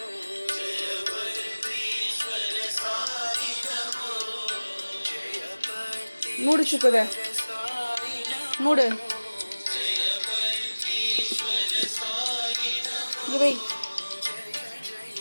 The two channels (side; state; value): both; inverted; correlation -1.00